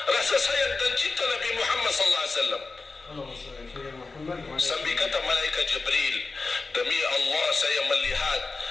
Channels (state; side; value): quieter; right; 3.9 dB